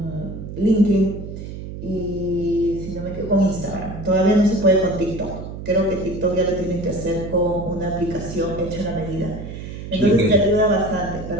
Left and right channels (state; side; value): noise; right; hum, 9 dB below the sound